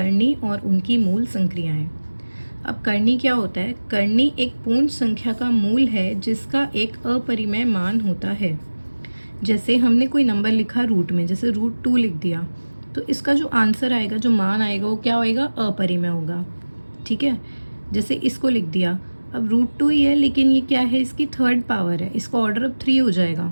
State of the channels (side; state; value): both; inverted; correlation -1.00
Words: और उनकी मूल संक्रियाएं। अब करनी क्या होता है? करनी एक पूर्ण संख्या का मूल है जिसका एक अपरिमेय मान होता है। जैसे हमने कोई नंबर लिखा रूट में, जैसे √2 लिख दिया, तो इसका जो आंसर आएगा, जो मान आएगा, वो क्या होएगा? अपरिमेय होगा। ठीक है। जैसे इसको लिख दिया, अब √2 ही है लेकिन ये क्या है? इसकी थर्ड पावर है, इसका ऑर्डर अब 3 हो जाएगा।